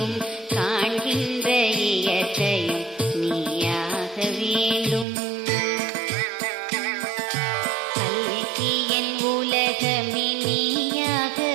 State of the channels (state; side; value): drops out; left; at 5.1 s